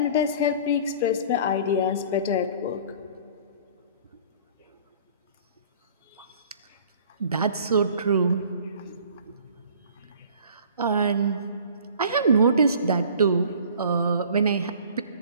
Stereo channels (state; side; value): inverted; both; correlation -0.48